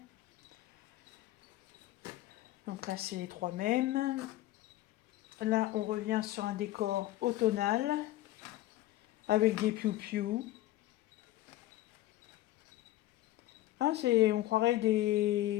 Donc là, c'est les trois mêmes. Là, on revient sur un décor automnal avec des piou-piou. Ah, on croirait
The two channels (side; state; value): right; quieter; 15.5 dB